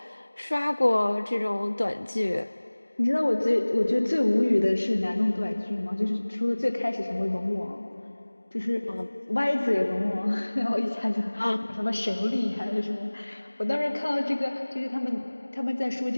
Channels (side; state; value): both; inverted; correlation -1.00